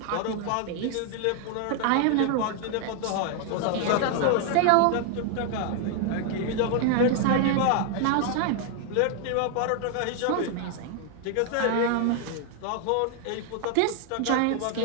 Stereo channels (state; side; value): different; both; correlation 0.00